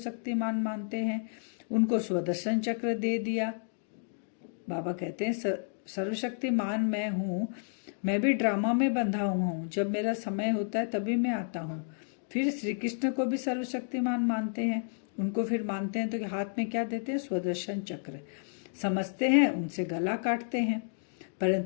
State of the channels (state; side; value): silent; right; digital silence